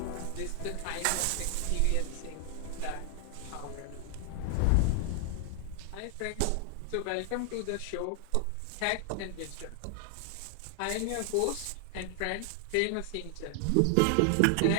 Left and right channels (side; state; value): both; different; correlation 0.00